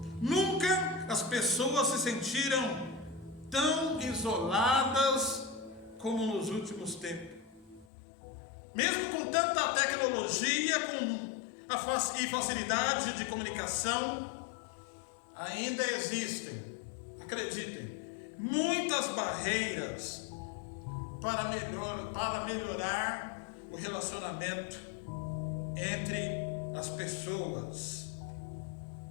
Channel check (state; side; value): drops out; right; at 7.9 s